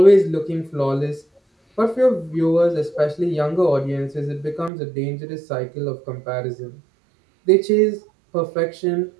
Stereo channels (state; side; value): drops out; left; at 4.7 s